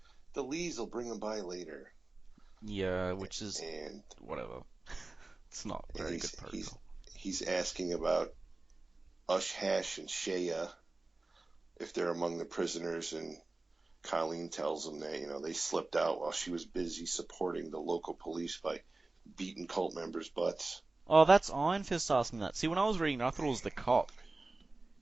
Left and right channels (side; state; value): left; quieter; 3.2 dB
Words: Lees will bring them by later. Yeah, which is whatever. It's not very good protocol. He's asking about Ush Hash and Shea if they're among the prisoners, and Colleen tells him that they slipped out while she was busy supporting the local police by beating cult members' butts. Oh, that's Iron Fist asking that. See, when I was reading, I thought it was the cop.